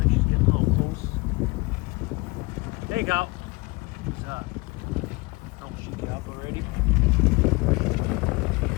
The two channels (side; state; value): right; quieter; 24.8 dB